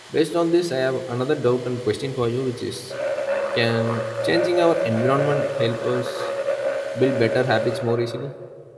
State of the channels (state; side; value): identical; both; correlation 1.00